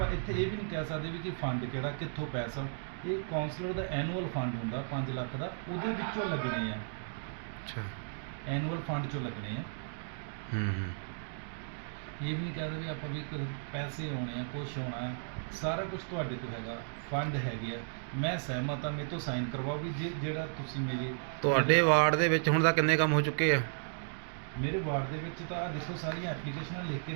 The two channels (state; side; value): silent; left; digital silence